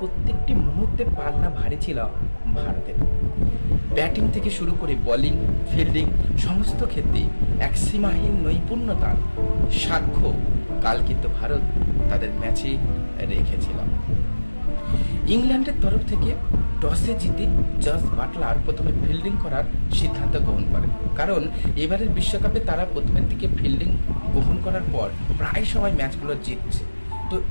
মুহূর্তে পাল্লা ভারী ছিল ভারতের। ব্যাটিং থেকে শুরু করে বোলিং, ফিল্ডিং সমস্ত ক্ষেত্রে এক সীমাহীন নৈপুণ্যতার সাক্ষ্য কাল কিন্তু ভারত তাদের ম্যাচে রেখেছিল। ইংল্যান্ডের তরফ থেকে টসে জিতে জস বাটলার প্রথমে ফিল্ডিং করার সিদ্ধান্ত গ্রহণ করেন, কারণ এবারের বিশ্বকাপে তারা প্রথমের দিকে ফিল্ডিং গ্রহণ করার পর প্রায় সময় ম্যাচগুলো জিতছে। তো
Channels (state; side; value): inverted; both; correlation -1.00